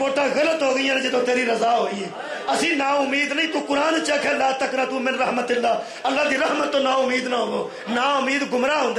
غلط ہو گئی ہیں جدو تیری رضا ہوئی ہے اسی نا امید نہیں تو قرآن چکھ ہے لا تقنطوا من رحمت اللہ دی رحمت تو نا امید نہ ہو نا امید گمراہ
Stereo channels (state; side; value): identical; both; correlation 1.00